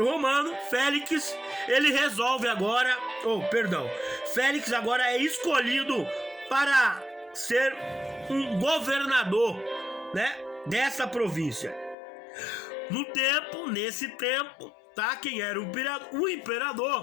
Romano, Félix, ele resolve agora, Félix agora é escolhido para ser um governador, né, dessa província. Nesse tempo, tá, quem era o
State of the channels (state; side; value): drops out; right; at 12.0 s